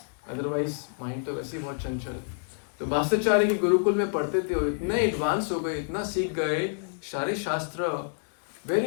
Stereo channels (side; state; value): right; silent; 57 dB below the other